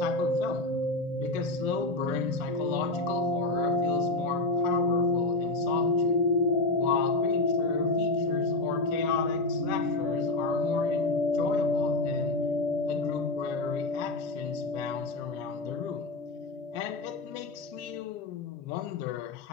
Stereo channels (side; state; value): right; quieter; 3.0 dB